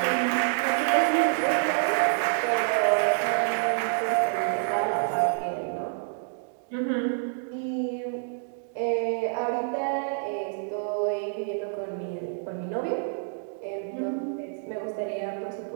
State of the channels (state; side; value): silent; left; digital silence